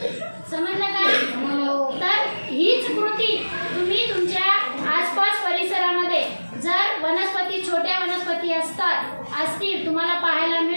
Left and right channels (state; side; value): inverted; both; correlation -1.00